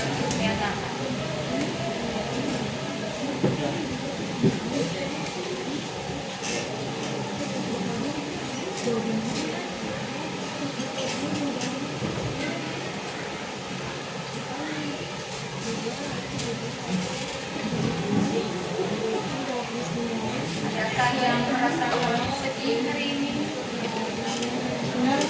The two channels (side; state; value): both; identical; correlation 1.00